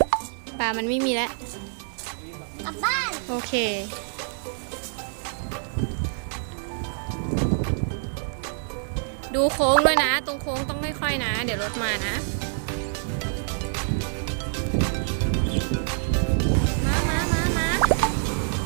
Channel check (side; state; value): left; silent; 57 dB below the other